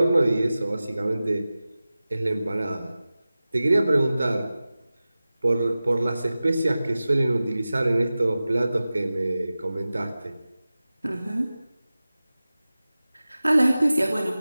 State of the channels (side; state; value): both; inverted; correlation -0.96